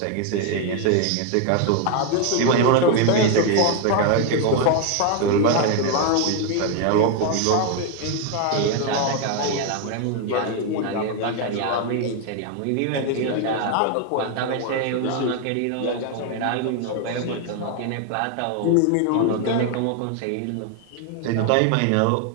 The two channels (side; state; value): both; different; correlation 0.01